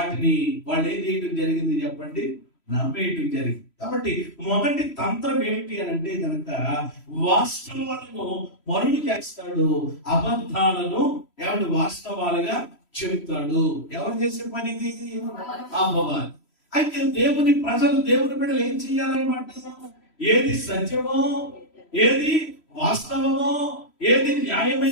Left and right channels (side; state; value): right; late; 3.0 ms